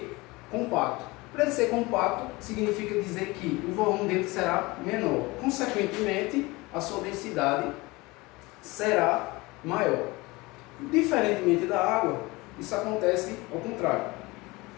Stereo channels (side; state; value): right; quieter; 22.8 dB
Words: compacto. Para ele ser compacto, significa dizer que o volume dele será menor. Consequentemente, a sua densidade será maior. Diferentemente da água, isso acontece ao contrário.